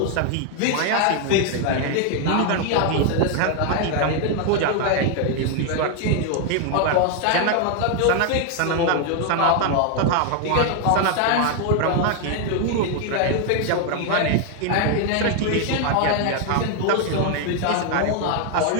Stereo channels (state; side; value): different; both; correlation 0.00